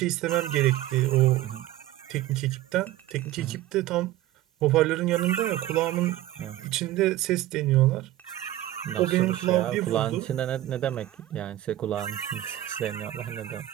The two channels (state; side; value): quieter; left; 14.5 dB